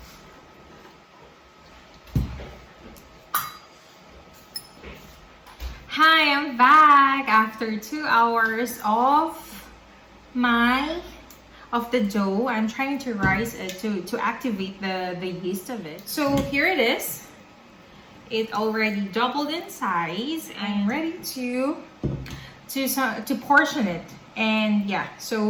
Hi, I'm back after 2 hours of the dough. I'm trying to rise it to activate the yeast of it. So here it is. It already doubled in size. I'm ready to portion it. And yeah,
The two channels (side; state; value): both; identical; correlation 1.00